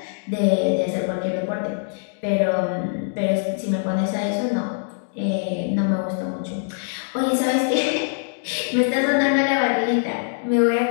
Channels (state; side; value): silent; right; digital silence